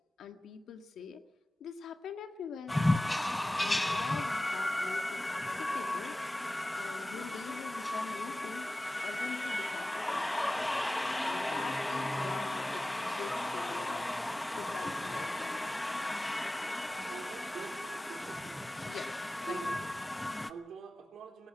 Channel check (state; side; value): normal; both; correlation 0.97